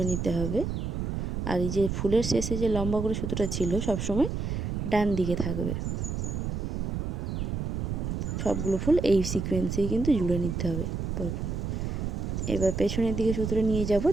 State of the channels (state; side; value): noise; right; rumble, 2 dB below the sound